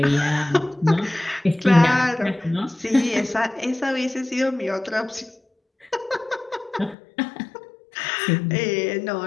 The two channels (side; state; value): right; drops out; at 7.0 s